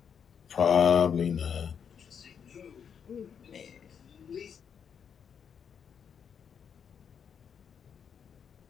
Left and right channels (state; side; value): quieter; right; 7.4 dB